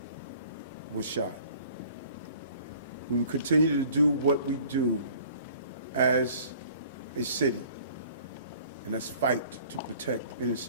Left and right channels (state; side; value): inverted; both; correlation -0.52